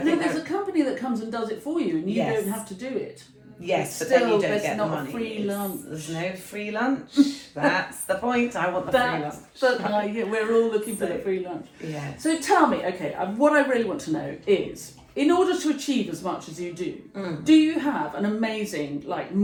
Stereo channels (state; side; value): identical; both; correlation 1.00